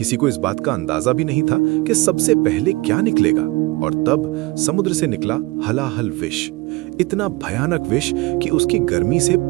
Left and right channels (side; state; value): left; quieter; 22.9 dB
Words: को इस बात का अंदाजा भी नहीं था कि सबसे पहले क्या निकलेगा, और तब समुद्र से निकला हलाहल विष। इतना भयानक विष कि उसकी गर्मी से